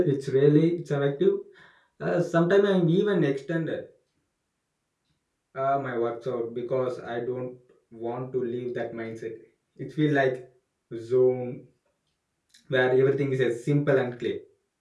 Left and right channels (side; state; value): both; identical; correlation 1.00